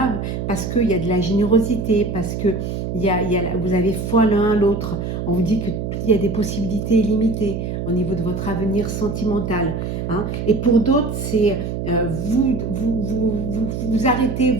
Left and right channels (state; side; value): noise; right; hum, 4 dB below the sound